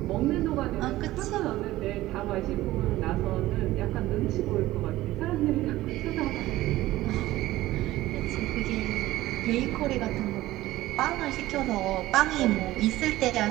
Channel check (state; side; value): quieter; left; 16.5 dB